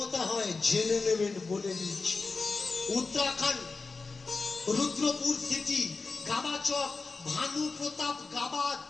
হয় জেনে নেবেন, বলে দিচ্ছি। উত্তরাখণ্ড রুদ্রপুর সিটি গাবাচক ভানু প্রতাপ গাবা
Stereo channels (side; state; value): right; quieter; 4.1 dB